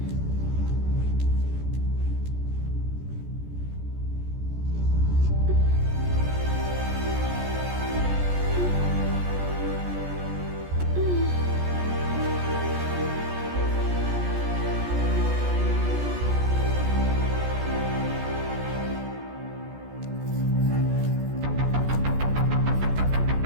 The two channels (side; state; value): left; late; 14 ms